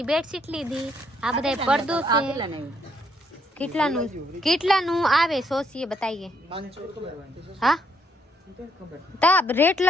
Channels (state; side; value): normal; both; correlation 0.72